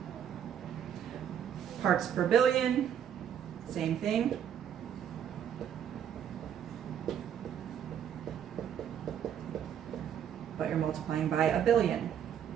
Parts per billion, same thing. But you're multiplying by 1,000,000,000.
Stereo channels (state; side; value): quieter; left; 9.1 dB